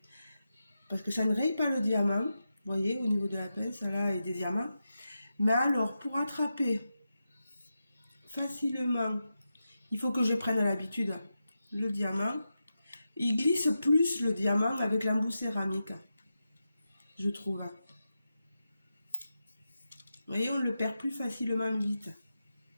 Parce que ça ne raye pas le diamant. Vous voyez, au niveau de la pince, là, et des diamants. Mais alors, pour attraper facilement, il faut que je prenne l'habitude. Le diamant, il glisse plus le diamant avec l'embout céramique, je trouve. Vous voyez, on le perd plus facilement vite.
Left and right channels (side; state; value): both; inverted; correlation -0.90